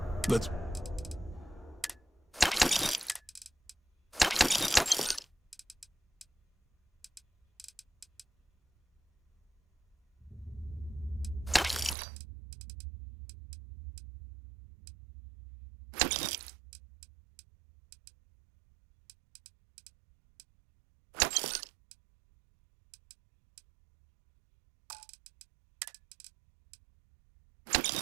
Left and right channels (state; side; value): drops out; left; at 12.0 s